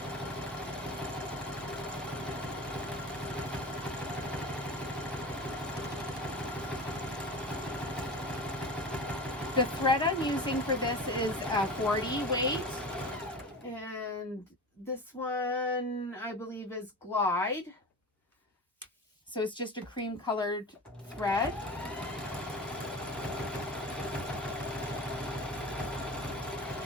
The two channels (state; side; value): normal; both; correlation 0.31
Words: The thread I'm using for this is a 40 weight, and this one I believe is Glide. So it's just a cream colored thread.